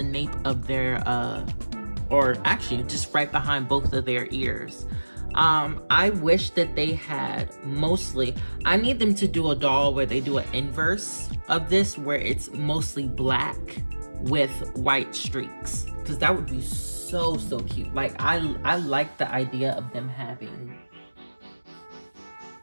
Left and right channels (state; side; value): inverted; both; correlation -1.00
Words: nape of their or actually just right behind both of their ears. I wish that they had mostly, I need them to do a doll where they do an inverse of this, where it's mostly black with white streaks, because that would be so cute. Like I like the idea of them having,